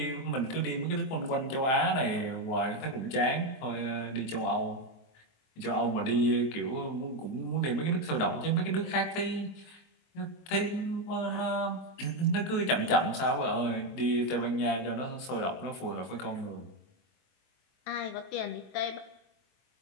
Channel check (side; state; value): right; late; 23 ms